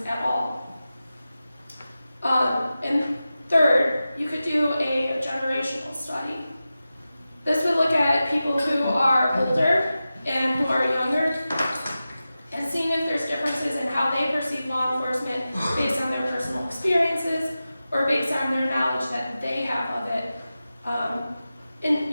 at all. And third, you could do a generational study. This would look at people who are older and who are younger, and seeing if there's differences in how they perceive law enforcement based on their personal experiences or based on their knowledge that they have of it. And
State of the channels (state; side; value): inverted; both; correlation -0.94